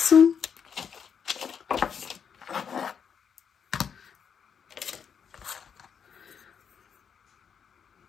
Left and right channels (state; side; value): quieter; right; 7.1 dB